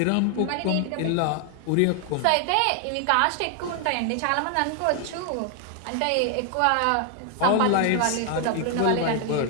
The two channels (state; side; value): different; both; correlation 0.00